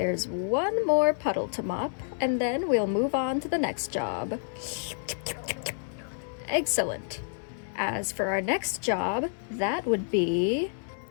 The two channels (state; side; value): silent; right; 59 dB below the other